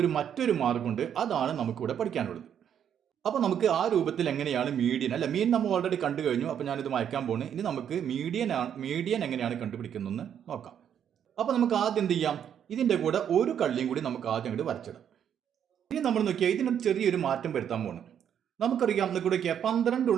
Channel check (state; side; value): quieter; left; 9.0 dB